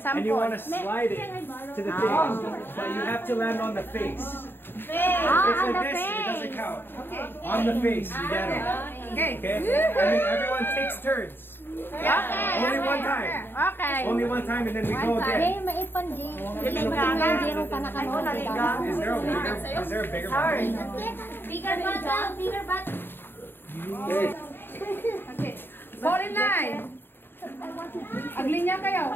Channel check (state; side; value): late; right; 0.10 ms